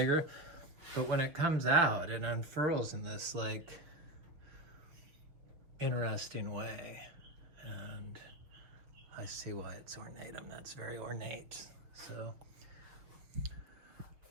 But when it comes out, it unfurls in this like interesting way, and I see why it's ornatum. That's very ornate. So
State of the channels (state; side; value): late; left; 6.3 ms